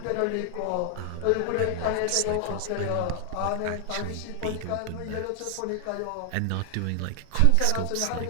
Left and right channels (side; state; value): both; different; correlation 0.00